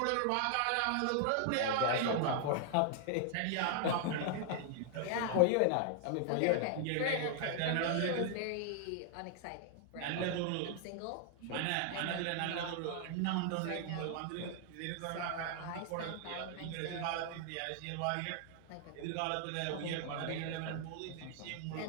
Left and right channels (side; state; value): both; different; correlation 0.00